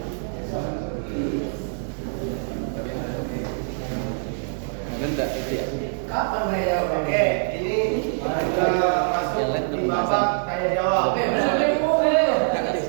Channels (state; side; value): silent; left; 62 dB below the other